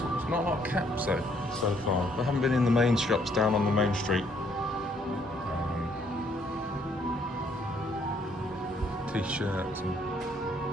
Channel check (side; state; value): both; normal; correlation 0.67